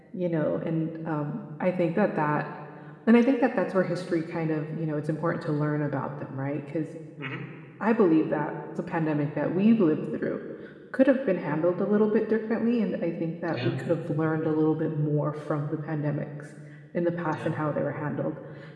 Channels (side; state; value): both; identical; correlation 1.00